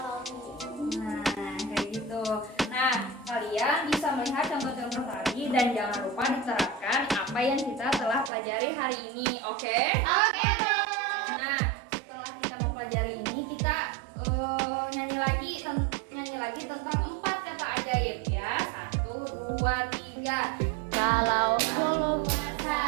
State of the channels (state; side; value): drops out; left; at 8.3 s